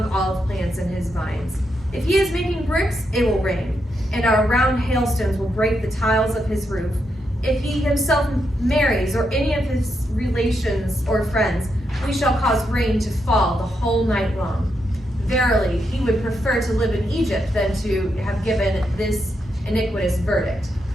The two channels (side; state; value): both; normal; correlation 0.82